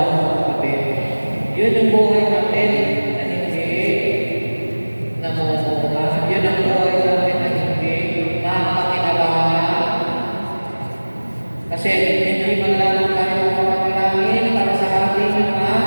kapatid? Yun ang buhay natin na hindi namumuha. Yun ang buhay natin na hindi mapakinabangan. Kasi hindi man lang tayo mapanalangin para sa ating mga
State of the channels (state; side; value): inverted; both; correlation -1.00